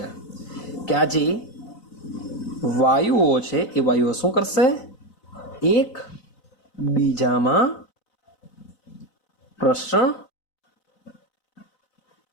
કે આ જે વાયુઓ છે એ વાયુઓ શું કરશે? એક બીજામાં પ્રસરણ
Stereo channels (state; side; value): late; right; 4.0 ms